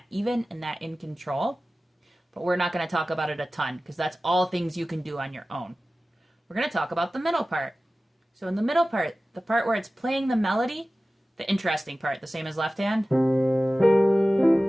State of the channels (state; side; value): normal; both; correlation 0.96